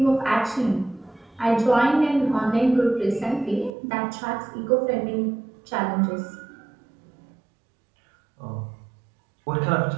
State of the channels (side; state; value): left; drops out; at 3.7 s